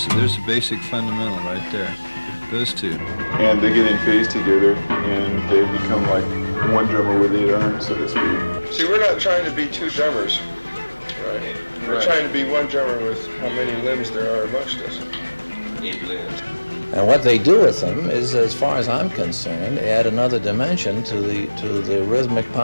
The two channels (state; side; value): inverted; both; correlation -1.00